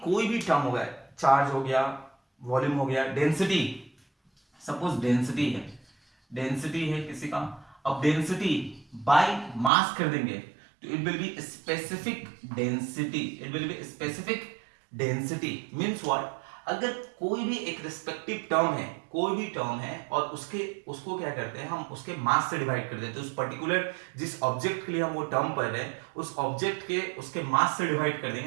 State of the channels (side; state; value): left; drops out; at 9.7 s